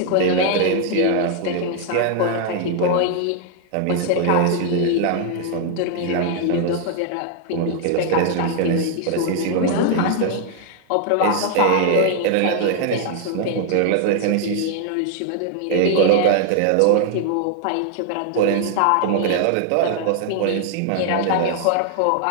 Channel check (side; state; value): both; different; correlation 0.00